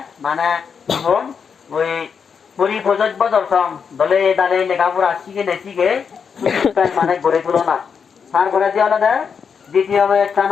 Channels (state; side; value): quieter; right; 6.4 dB